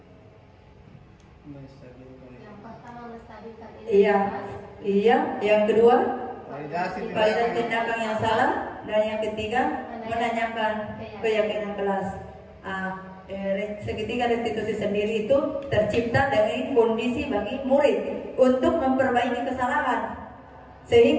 Yang pertama menstabilkan Iya. Yang kedua, Validasi tindakan yang salah, dan yang ketiga menanyakan keyakinan kelas. Segitiga restitusi sendiri itu tercipta dari kondisi bagi murid untuk memperbaiki kesalahan,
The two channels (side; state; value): both; identical; correlation 1.00